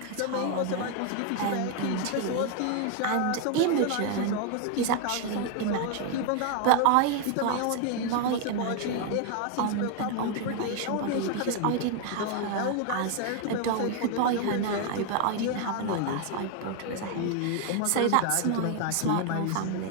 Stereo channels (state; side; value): different; both; correlation 0.01